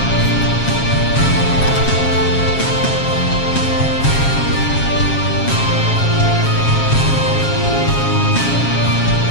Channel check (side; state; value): right; late; 7.3 ms